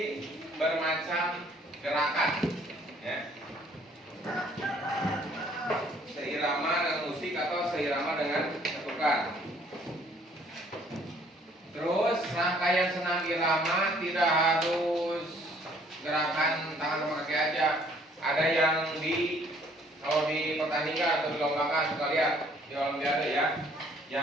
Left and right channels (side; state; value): both; normal; correlation 0.61